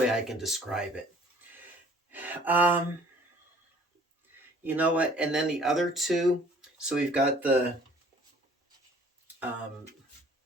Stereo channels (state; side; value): normal; both; correlation 0.54